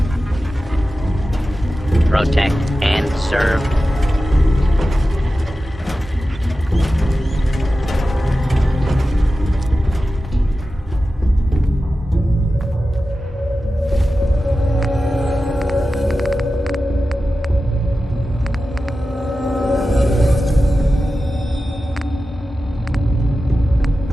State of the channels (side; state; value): both; normal; correlation 0.93